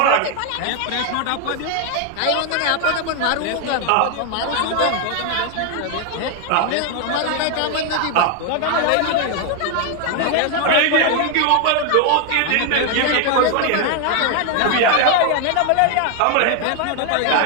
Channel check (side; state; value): both; different; correlation 0.01